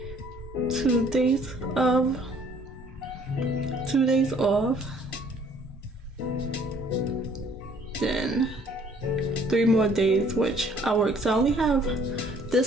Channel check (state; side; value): normal; both; correlation 0.59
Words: 2 days off, then 3 more days which I work. So I only have